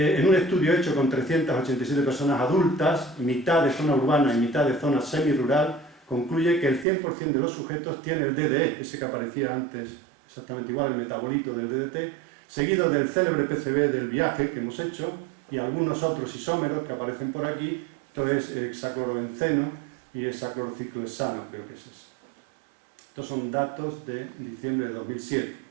un estudio hecho con 387 personas adultas, mitad de zona urbana y mitad de zona semirural, concluye que el 100% de los sujetos tiene el DDE, ese que aparecía antes, exactamente igual, el metabolito del DDT, seguido del célebre PCB del viaje que hemos hecho y algunos otros isómeros que aparecen por aquí, esto es hexaclorobenceno y hexaclorociclohexano, creo que es eso. Estos son datos de diciembre de 2007.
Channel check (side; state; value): left; drops out; at 6.9 s